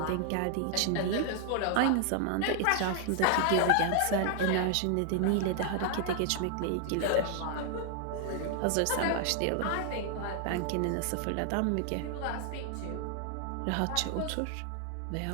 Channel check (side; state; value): both; different; correlation 0.00